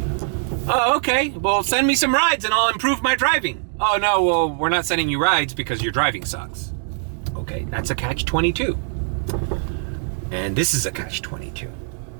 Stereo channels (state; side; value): silent; left; 64 dB below the other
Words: Oh, okay. Well, send me some rides and I'll improve my driving. Oh, no, well, we're not sending you rides because your driving sucks. Okay, that's a catch-22. And this is a catch-22.